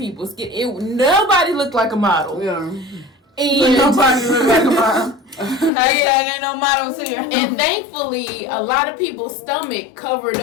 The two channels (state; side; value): drops out; right; at 5.7 s